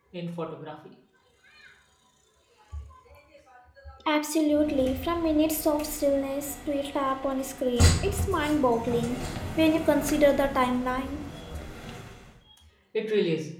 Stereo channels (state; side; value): identical; both; correlation 1.00